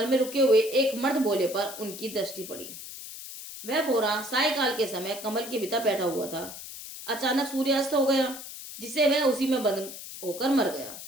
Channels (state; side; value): noise; left; hiss, 11 dB below the sound